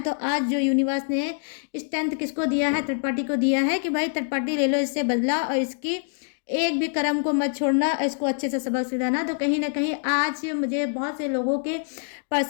आज जो यूनिवर्स ने स्ट्रेंथ किसको दिया है, थर्ड पार्टी को दिया है कि भाई थर्ड पार्टी ले लो इससे बदला और इसकी एक भी कर्म को मत छोड़ना, इसको अच्छे से सबक सिखाना। तो कहीं ना कहीं आज मुझे बहुत से लोगों के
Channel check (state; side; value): silent; right; 62 dB below the other